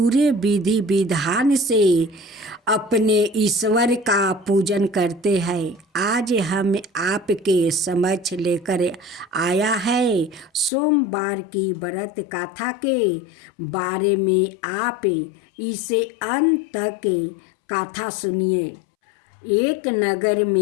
विधि विधान से अपने ईश्वर का पूजन करते हैं। आज हम आपके समक्ष लेकर आया है सोमवार की व्रत कथा के बारे में। आप इसे अंत तक कथा सुनिए। एक नगर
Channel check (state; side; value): drops out; right; at 10.7 s